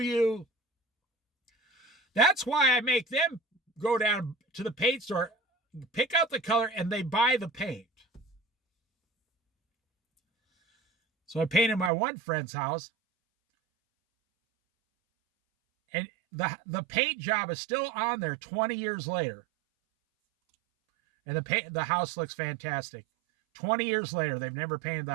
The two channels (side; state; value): left; drops out; at 11.9 s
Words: That's why I make them go down to the paint store, pick out the color, and they buy the paint. So I painted my one friend's house, and the paint job is still on there 20 years later. And the house looks fantastic. 20 years later, they've never painted the